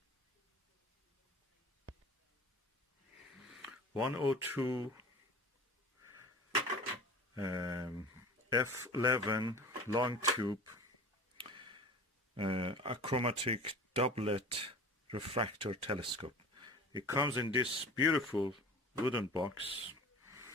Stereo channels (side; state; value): both; normal; correlation 0.39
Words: 102 F11 long tube achromatic doublet refractor telescope. It comes in this beautiful wooden box.